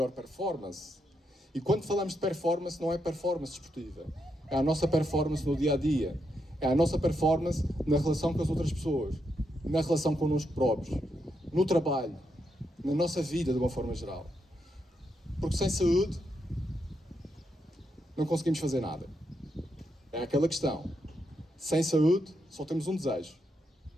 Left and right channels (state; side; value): normal; both; correlation 0.81